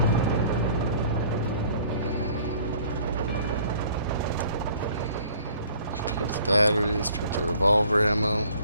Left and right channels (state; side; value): inverted; both; correlation -0.54